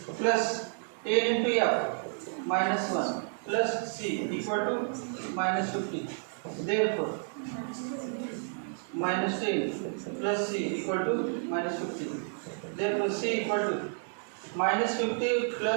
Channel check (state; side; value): silent; left; 57 dB below the other